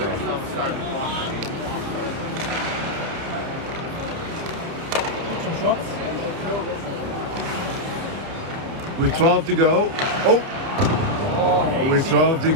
Some shots. with 12 to go. Oh, with 12 to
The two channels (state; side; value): late; left; 30 ms